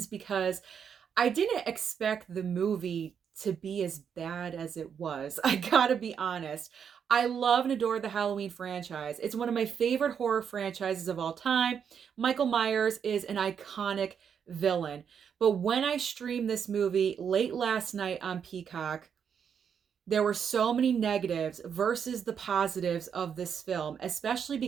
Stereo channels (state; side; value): quieter; left; 7.5 dB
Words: because I didn't expect the movie to be as bad as it was. I gotta be honest. I love and adore the Halloween franchise. It's one of my favorite horror franchises of all time. Michael Myers is an iconic villain. But when I streamed this movie late last night on Peacock, there were so many negatives versus the positives of this film, especially